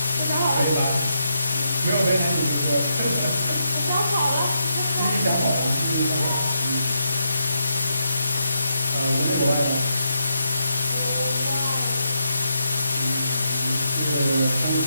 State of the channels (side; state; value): both; inverted; correlation -0.82